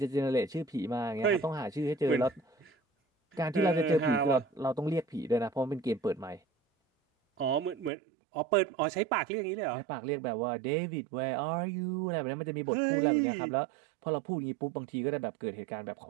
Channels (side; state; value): left; drops out; at 7.9 s